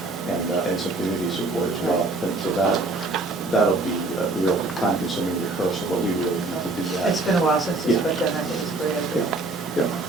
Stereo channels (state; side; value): quieter; left; 3.2 dB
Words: and some community support as well. And so that'll be a real time-consuming rehearsal, but we really need to do that. It's been a while since it's Yeah. been done. I think it's a great idea. Yeah.